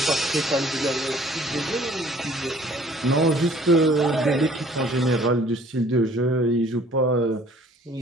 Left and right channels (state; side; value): normal; both; correlation 0.55